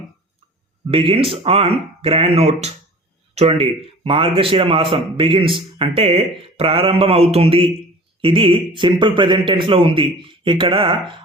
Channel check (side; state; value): both; normal; correlation 0.43